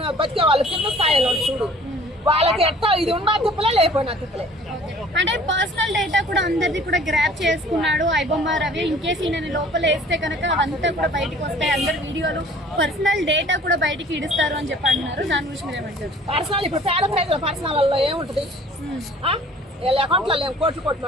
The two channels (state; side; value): normal; both; correlation 0.50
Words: బతికే వాళ్ళు కింద స్థాయిలో చూడు, వాళ్ళకి ఎట్టా ఇది ఉన్నా తిప్పలే లేకపోయినా తిప్పలే. అంటే పర్సనల్ డేటా కూడా అందరిది కూడా గ్రాప్ చేసుకున్నాడు ఐబొమ్మ రవి. ఇన్ కేసు ఈయన లోపల వేస్తే కనుక అవంతా కూడా బయటకు వస్తాయి, అందరి వీడియోలు పర్సనల్ డేటా కూడా బయటికి ఇడుస్తారు అని చెప్పి అంటున్నారు. దాని గురించి మీరు ఏమంటారు? పర్సనల్ ఇప్పుడు పేద ప్రజల పర్సనల్ ఏముంటది, వీళ్ళ అకౌంట్లలో కోట్లు